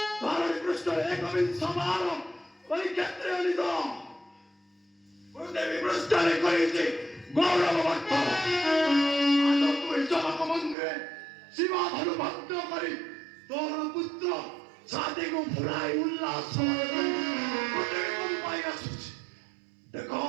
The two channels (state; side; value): drops out; left; at 10.8 s